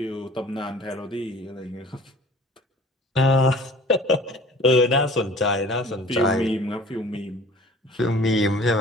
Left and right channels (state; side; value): normal; both; correlation 0.47